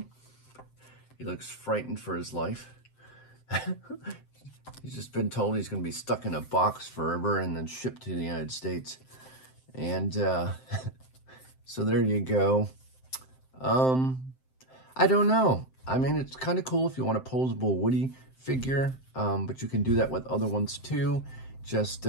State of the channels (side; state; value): right; late; 7.7 ms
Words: He looks frightened for his life. He's just been told he's going to be stuck in a box forever and then shipped to the United States. And so there you go. I don't know. I mean, it's kind of cool if you want a posable Woody figure, but you can do that with other ones too. Just,